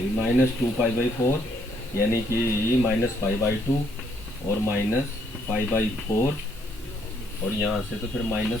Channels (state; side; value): normal; both; correlation 0.70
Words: माइनस 2π/4, यानी कि माइनस π/2 और माइनस π/4, और यहाँ से तो फिर